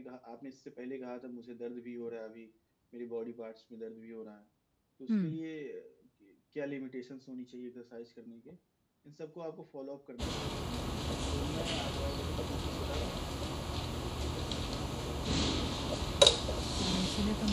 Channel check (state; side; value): identical; both; correlation 1.00